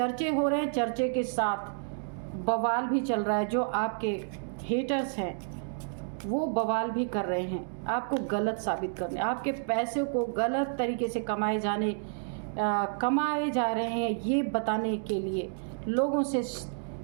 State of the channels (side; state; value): left; silent; digital silence